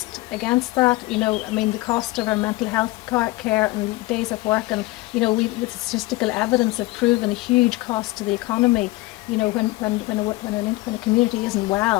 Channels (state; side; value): quieter; right; 20.0 dB